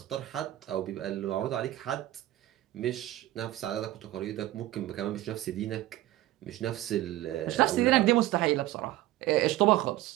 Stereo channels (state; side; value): quieter; left; 15.5 dB